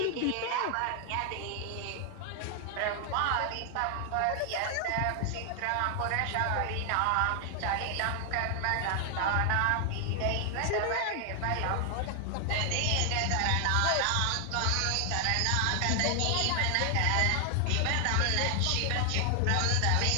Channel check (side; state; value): both; different; correlation 0.00